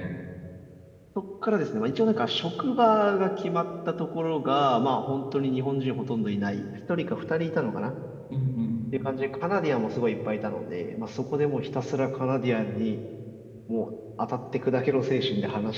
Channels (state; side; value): identical; both; correlation 1.00